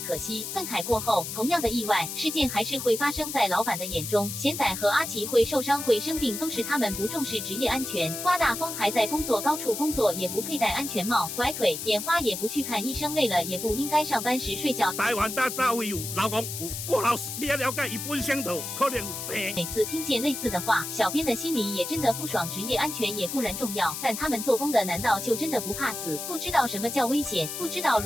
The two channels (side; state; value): left; noise; hiss, 6 dB below the sound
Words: 惜，愤慨过后，同样的意外事件还是会发生在老板的眼中。贤仔和阿奇会受伤会生病，都是他们不重视职业安全。刮大风还在工作高处工作，也不佩戴安全帽，拐腿眼花也不去看医生，累了也不应该上班时睡觉。台湾大早有老公有过劳死，你要了解伊本身就可能有病。每次听见类似的话，小编的心里也真的不爽。职业安全也固然重要，但他们做工的难道就真的不怕死？不知道什么叫危险，不知道